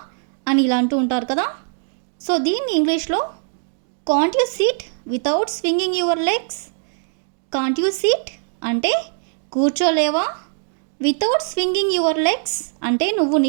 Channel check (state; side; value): silent; left; digital silence